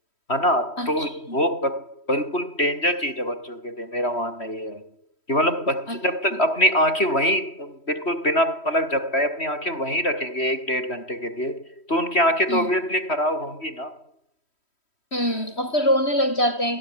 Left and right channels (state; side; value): late; right; 3.1 ms